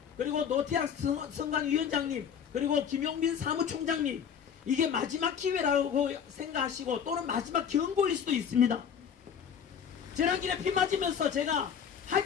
그리고 노태학 선관위원장님, 그리고 김용민 사무총장님, 이게 마지막 기회라고 생각하시고 또는 마지막 경고일 수도 있습니다. 지난길에 피 맞으면서 제가 할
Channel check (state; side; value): quieter; right; 7.8 dB